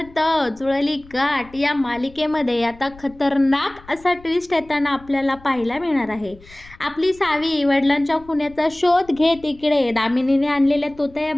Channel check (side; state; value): left; noise; rumble, 23 dB below the sound